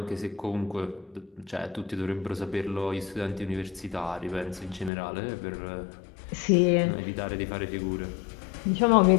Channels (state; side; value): drops out; right; at 4.9 s